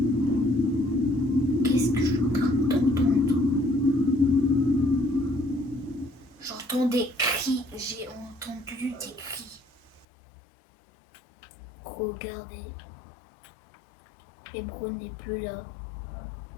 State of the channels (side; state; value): right; drops out; at 10.1 s